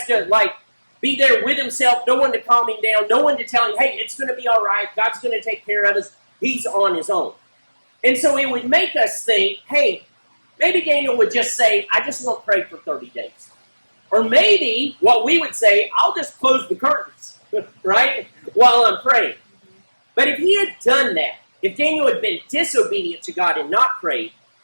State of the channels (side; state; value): both; inverted; correlation -1.00